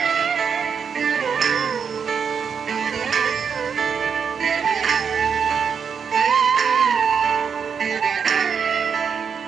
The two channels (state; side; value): quieter; left; 6.7 dB